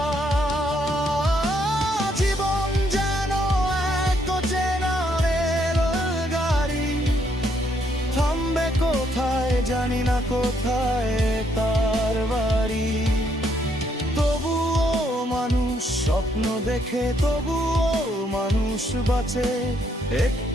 জীবন যেন এক অচেনা রেলগাড়ি, থামবে কোথায় জানি না, কোথায় তার বাড়ি। তবুও মানুষ স্বপ্ন দেখে, তবুও মানুষ বাঁচে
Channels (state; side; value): normal; both; correlation 0.72